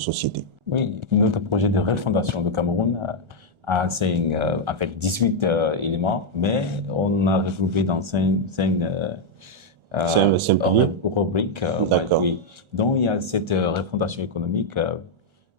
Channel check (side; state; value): left; late; 1.4 ms